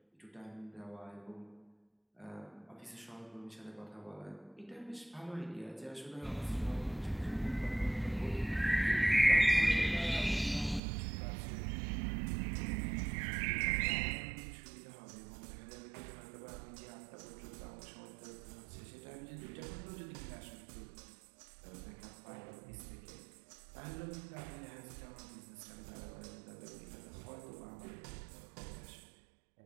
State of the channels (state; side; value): drops out; left; at 10.8 s